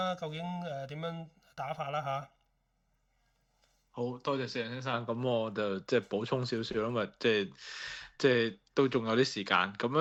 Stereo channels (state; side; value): identical; both; correlation 1.00